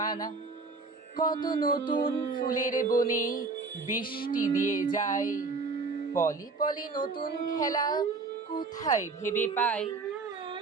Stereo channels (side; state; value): left; quieter; 4.1 dB